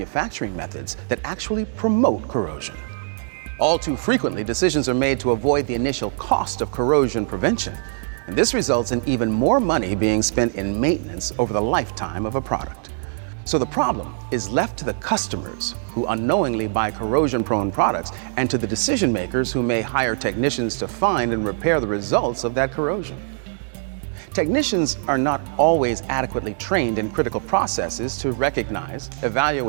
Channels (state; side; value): silent; left; 64 dB below the other